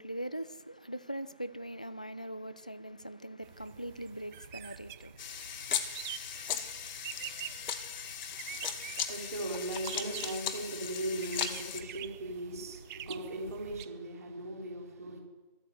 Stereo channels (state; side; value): inverted; both; correlation -0.33